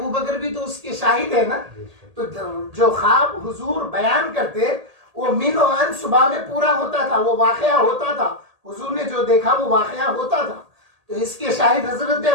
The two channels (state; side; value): late; left; 1.8 ms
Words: بھی تو اس کے شاہد ہے نا. تو جو خواب حضور بیان کرتے وہ من و عن صبح میں پورا ہوتا تھا، وہ واقعہ ہوتا تھا. حضور نے جو دیکھا وہ واقعہ ہوتا تھا. تو اس کے شاہد حضرت